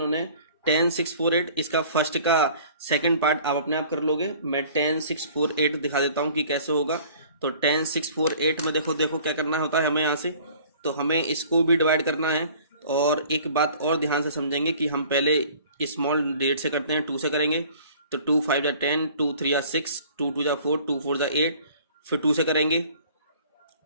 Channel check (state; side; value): inverted; both; correlation -0.50